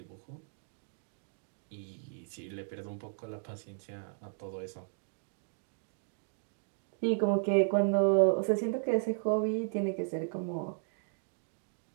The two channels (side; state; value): left; silent; digital silence